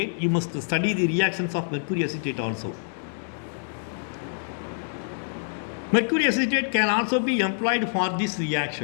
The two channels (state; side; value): silent; right; 61 dB below the other